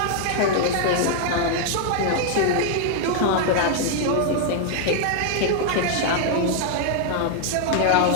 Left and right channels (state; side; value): different; both; correlation 0.00